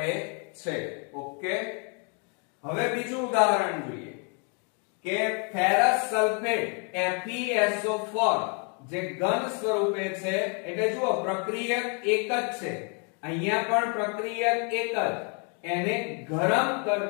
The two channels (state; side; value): quieter; right; 37.9 dB